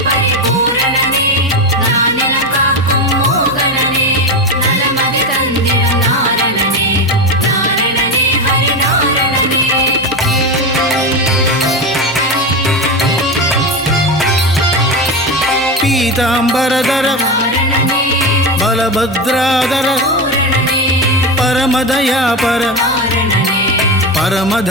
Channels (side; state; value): both; normal; correlation 0.17